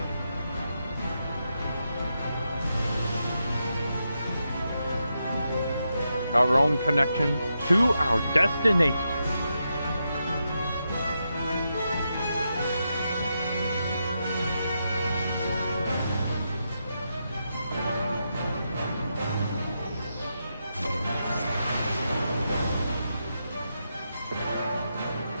Our own connection to our destination.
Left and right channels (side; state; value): both; inverted; correlation -0.85